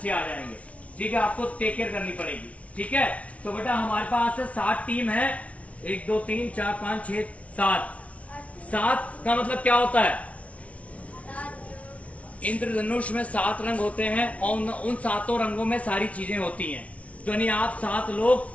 आ जाएंगे, ठीक है। आपको टेक केयर करनी पड़ेगी, ठीक है। तो बेटा हमारे पास 7 टीम है, 1 2 3 4 5 6 7। 7 का मतलब क्या होता है? इंद्रधनुष में 7 रंग होते हैं और उन 7 रंगों में सारी चीजें होती हैं। तो यानी आप 7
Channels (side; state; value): right; late; 0.065 ms